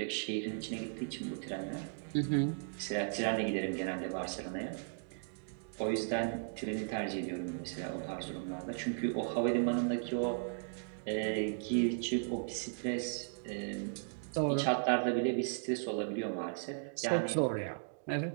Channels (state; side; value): silent; left; digital silence